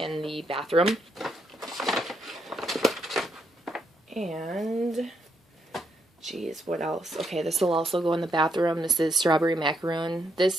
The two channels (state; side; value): normal; both; correlation 0.77